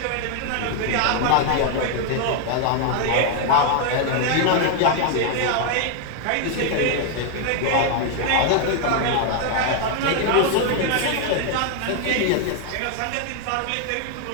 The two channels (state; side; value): different; both; correlation 0.00